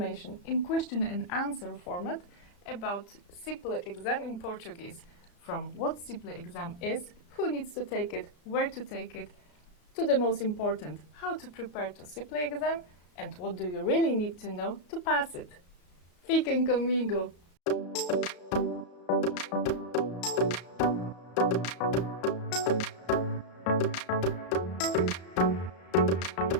in question and answer format about CIPLE exam in Portuguese. From what CIPLE exam is, who needs to take it, where to take it, to the most important, how to prepare to CIPLE exam, and what do you really need to know to pass it. Fiquem comigo!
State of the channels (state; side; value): late; right; 34 ms